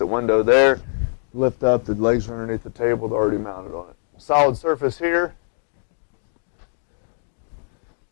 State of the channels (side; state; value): right; silent; digital silence